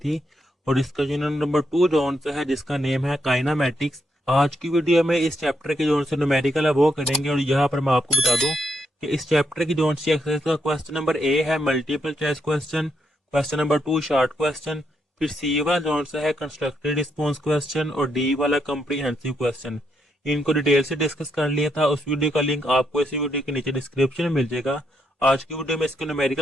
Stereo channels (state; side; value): normal; both; correlation 0.79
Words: और इसका यूनिट नंबर 2 जोन से है जिसका नेम है काइनामेटिक्स। आज की वीडियो में इस चैप्टर के जोन से न्यूमेरिकल है वो करेंगे और यहाँ पर मैं आपको बता दूं कि इस चैप्टर की जोन से एक्सरसाइज का क्वेश्चन नंबर ए है multiple choice question, question number 2 short question, फिर सी वाला जोन से है कंस्ट्रक्टेड रिस्पॉन्स क्वेश्चन और डी वाला कॉम्प्रिहेंसिव क्वेश्चन। इनको डिटेल से डिस्कस कर लिया था। उस वीडियो का लिंक आपको इसी वीडियो के नीचे डिस्क्रिप्शन में मिल जाएगा। आज की वीडियो में इसको